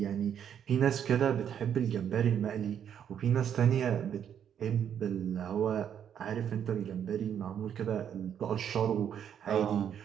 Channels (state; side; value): quieter; left; 8.9 dB